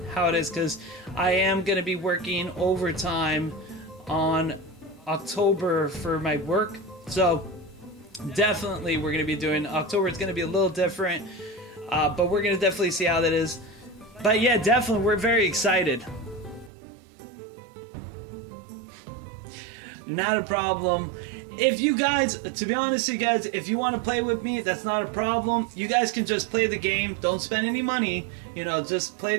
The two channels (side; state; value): left; drops out; at 16.7 s